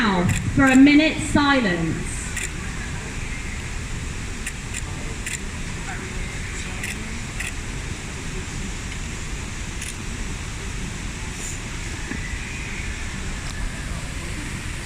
for a minute's silence.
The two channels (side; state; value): both; identical; correlation 1.00